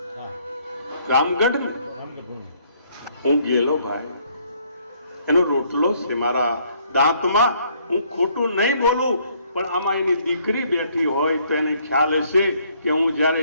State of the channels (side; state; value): both; inverted; correlation -0.66